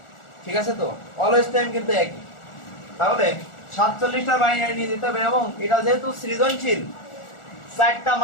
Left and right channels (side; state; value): right; late; 1.4 ms